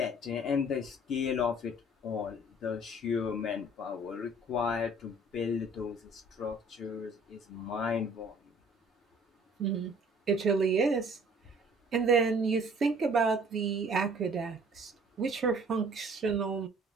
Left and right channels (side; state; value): both; normal; correlation 0.54